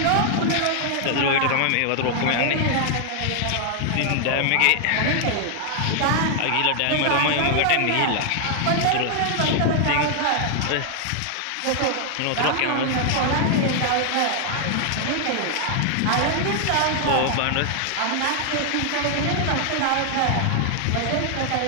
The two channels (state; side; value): different; both; correlation 0.00